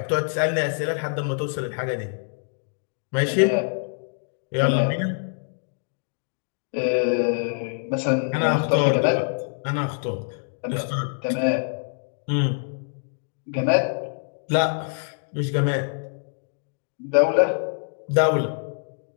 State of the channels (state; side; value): silent; right; digital silence